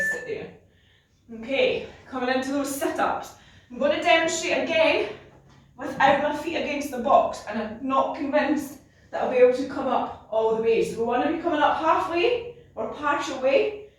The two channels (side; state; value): both; identical; correlation 1.00